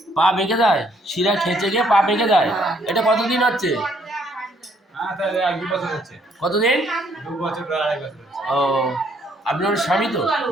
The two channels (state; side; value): normal; both; correlation 0.67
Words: পা বেঁকে যায়, শিরা খেঁচে গিয়ে পা বেঁকে যায়। এটা কতদিন হচ্ছে? কতদিন? 2 বছর, 2.5 বছর। ও, আপনার স্বামী তো?